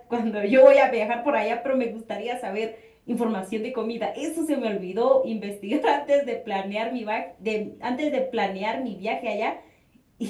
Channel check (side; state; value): both; identical; correlation 1.00